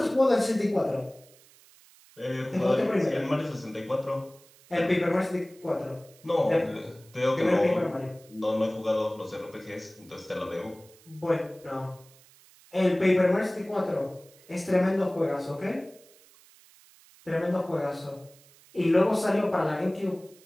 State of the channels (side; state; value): right; noise; hiss, 26 dB below the sound